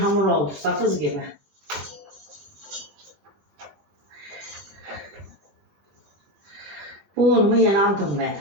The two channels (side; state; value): left; late; 21 ms